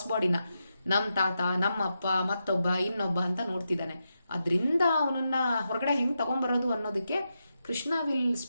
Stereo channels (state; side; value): inverted; both; correlation -0.87